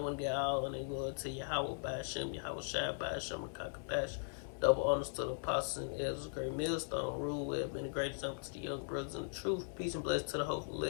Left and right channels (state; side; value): silent; right; digital silence